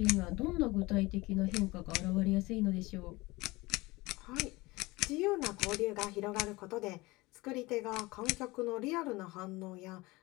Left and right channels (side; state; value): right; quieter; 21.8 dB